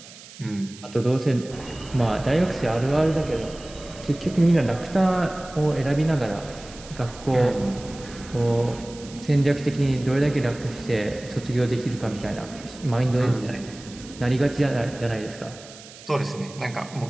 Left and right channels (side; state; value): right; noise; hiss, 18 dB below the sound